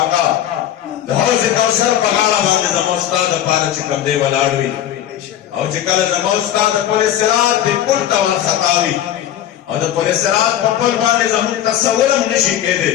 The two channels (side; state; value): right; quieter; 11.4 dB